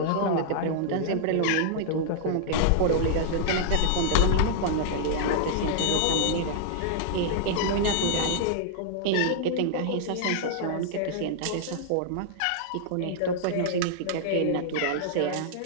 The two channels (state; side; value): different; both; correlation -0.01